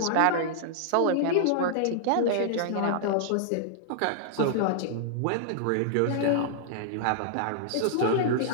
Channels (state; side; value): different; both; correlation -0.01